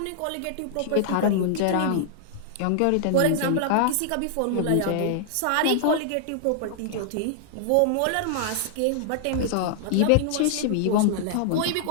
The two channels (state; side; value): different; both; correlation -0.01